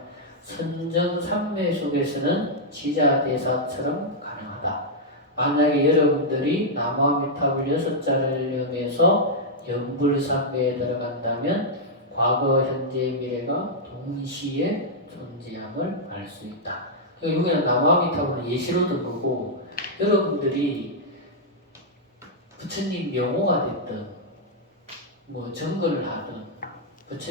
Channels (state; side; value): normal; both; correlation -0.06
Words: 선정삼매 속에서는 지자대사처럼 가능하다. 만약에 여러분들이 남아미탑을 6자를 염해서 연불삼매에 들어간다면 과거, 현재, 미래가 동시에 존재함을 알 수 있다. 여기는 남아미탑은 예시로도 보고 여러분들이 부처님 명호가 됐든 뭐 정근을 하든